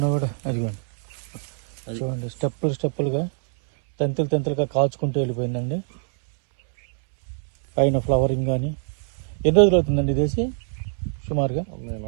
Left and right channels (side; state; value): left; silent; 63 dB below the other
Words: కూడా అది చూడండి, స్టెప్పులుగా తెంతులుగా కాచుకుంటూ వెళ్ళిపోయిందండి. పైన ఫ్లవరింగ్ కానీ. ఎన్ని రోజులు అవుతుందండి ఇదేసి? సుమారుగా నేను